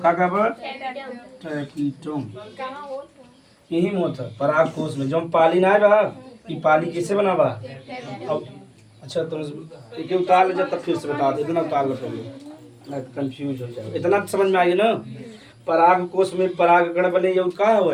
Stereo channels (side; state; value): both; identical; correlation 1.00